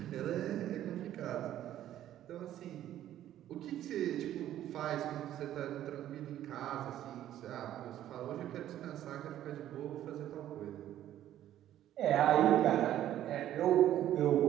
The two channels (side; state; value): left; quieter; 12.2 dB